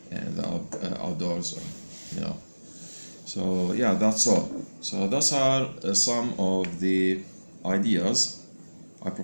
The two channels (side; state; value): both; inverted; correlation -1.00